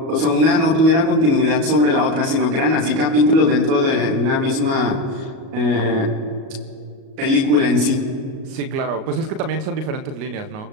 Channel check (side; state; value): left; late; 37 ms